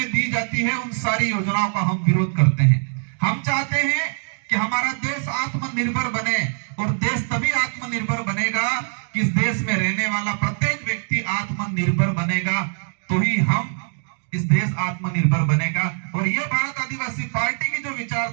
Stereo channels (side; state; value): left; silent; 57 dB below the other